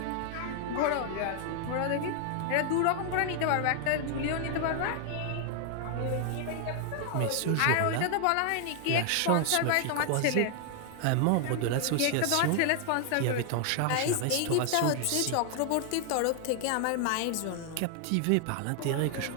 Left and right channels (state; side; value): different; both; correlation 0.00